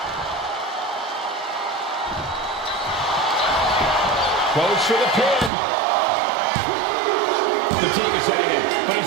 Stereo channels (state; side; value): drops out; left; at 5.5 s